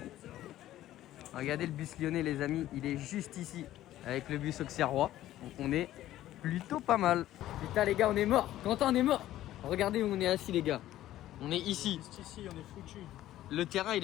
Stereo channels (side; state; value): right; quieter; 13.8 dB